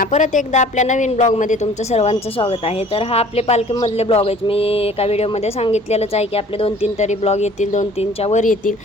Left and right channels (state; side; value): normal; both; correlation 0.51